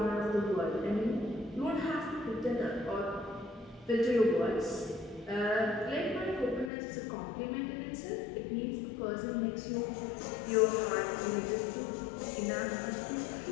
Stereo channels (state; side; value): drops out; right; at 6.7 s